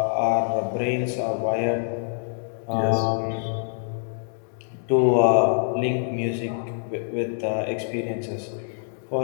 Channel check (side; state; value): right; silent; digital silence